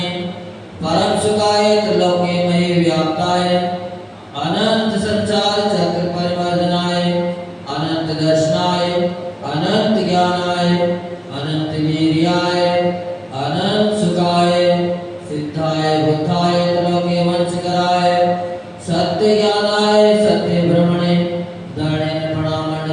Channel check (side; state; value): both; identical; correlation 1.00